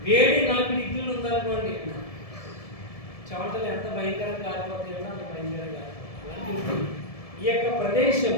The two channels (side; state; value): right; late; 1.7 ms